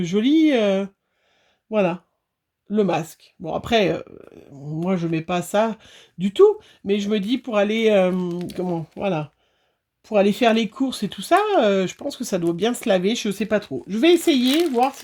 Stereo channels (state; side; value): identical; both; correlation 1.00